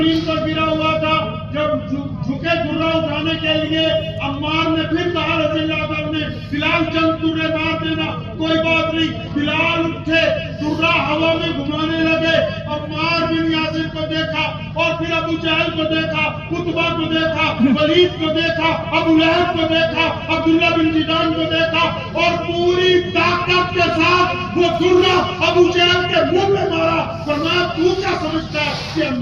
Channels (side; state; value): both; identical; correlation 1.00